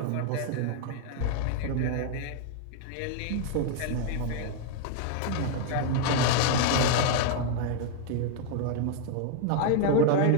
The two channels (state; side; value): different; both; correlation 0.00